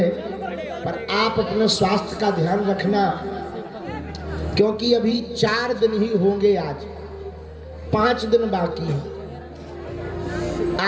पर आप अपने स्वास्थ्य का ध्यान रखना, क्योंकि अभी 4 दिन ही होंगे, आज 5 दिन बाकी है।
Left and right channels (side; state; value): both; identical; correlation 1.00